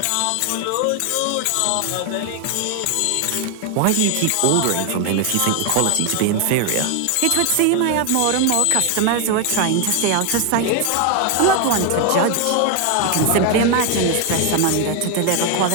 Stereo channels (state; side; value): different; both; correlation 0.01